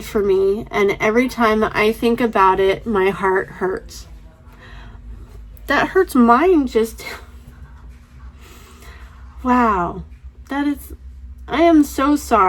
for me, and every time I think about it, my heart hurts. That hurts mine just... Wow. I am so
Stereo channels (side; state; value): both; identical; correlation 1.00